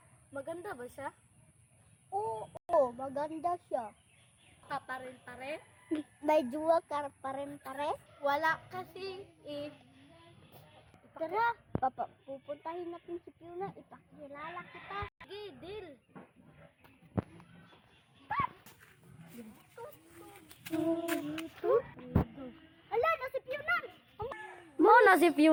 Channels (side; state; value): both; identical; correlation 1.00